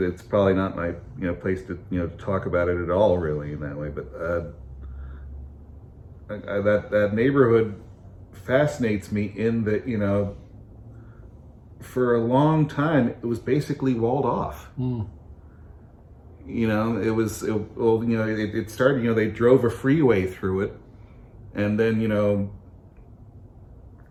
it's probably not my place to talk about it at all, really, in that way. But that neighborhood fascinates me in that for a long time it was basically walled off. It started, they drove a freeway through it, and then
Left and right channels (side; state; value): both; identical; correlation 1.00